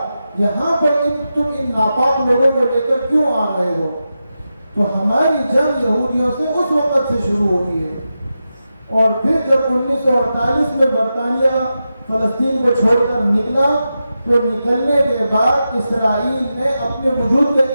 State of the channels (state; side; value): inverted; both; correlation -0.90